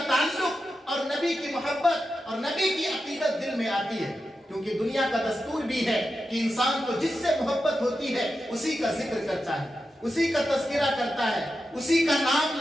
تعلق اور نبی کی محبت اور نبی کی عقیدت دل میں آتی ہے، کیونکہ دنیا کا دستور بھی ہے کہ انسان کو جس سے محبت ہوتی ہے اسی کا ذکر کرتا ہے، اسی کا تذکرہ کرتا ہے، اسی کا نام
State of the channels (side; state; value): both; normal; correlation 0.90